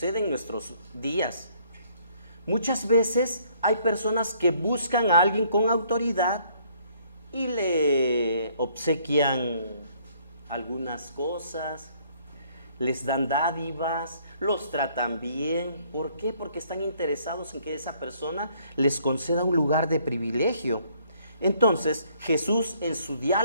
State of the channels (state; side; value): inverted; both; correlation -0.64